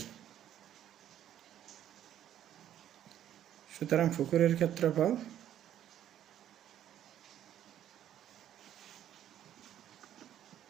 সুতরাং পুকুরের ক্ষেত্রফল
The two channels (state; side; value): quieter; left; 11.1 dB